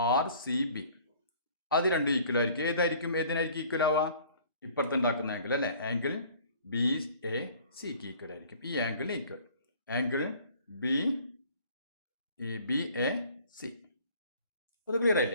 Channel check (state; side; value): inverted; both; correlation -0.52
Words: RCB. അത് രണ്ടും ഈക്വൽ ആയിരിക്കും. ഏതിനായിരിക്കും ഈക്വൽ ആവുക? ഇപ്പുറത്തുണ്ടാക്കുന്ന ആംഗിൾ അല്ലെ, ആംഗിൾ BACക്ക് ഈക്വൽ ആയിരിക്കും. ഈ ആംഗിളിന് ഈക്വൽ ആംഗിൾ BAC. അത് ക്ലിയർ